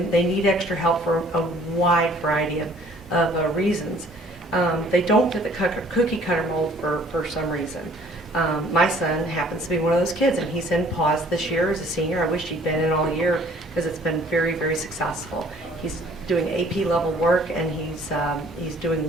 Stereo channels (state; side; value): normal; both; correlation 0.56